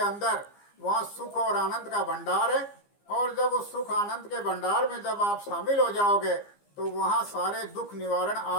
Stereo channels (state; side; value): late; right; 15 ms